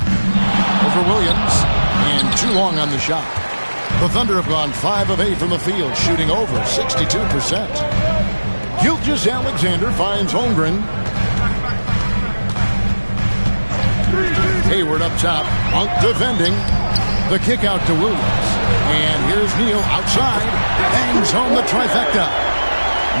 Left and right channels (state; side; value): inverted; both; correlation -1.00